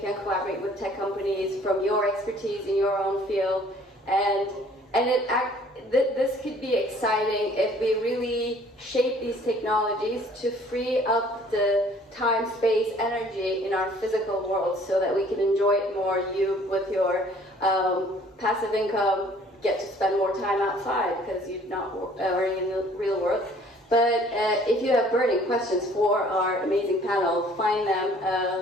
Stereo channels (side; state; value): both; normal; correlation 0.56